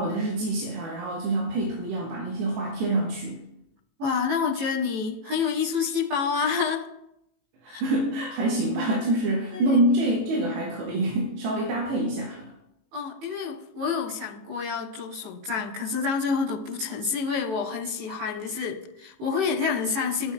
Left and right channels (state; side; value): late; left; 18 ms